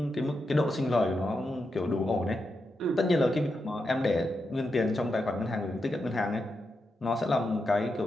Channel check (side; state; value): both; normal; correlation 0.86